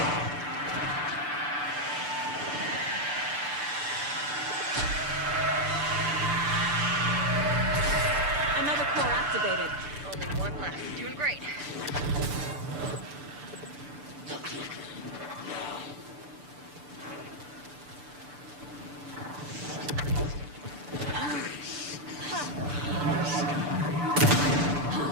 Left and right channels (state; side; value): late; left; 6.8 ms